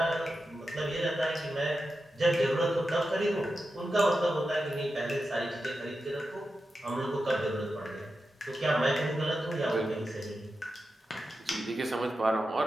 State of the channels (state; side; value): normal; both; correlation 0.90